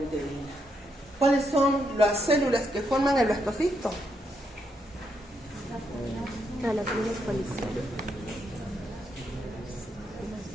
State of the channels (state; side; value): normal; both; correlation 0.79